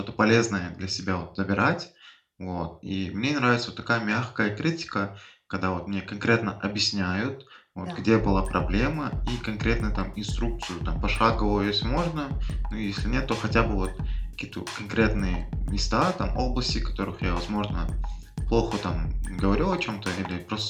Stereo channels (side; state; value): both; identical; correlation 1.00